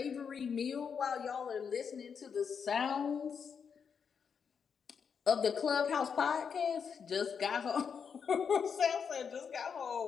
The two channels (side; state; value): right; quieter; 6.6 dB